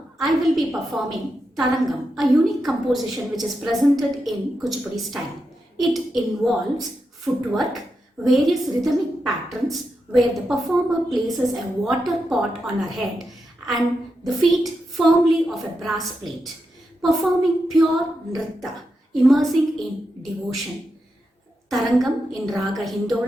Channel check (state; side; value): normal; both; correlation 0.87